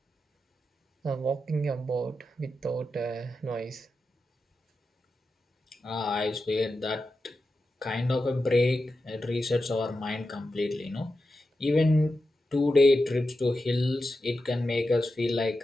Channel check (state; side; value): normal; both; correlation 0.90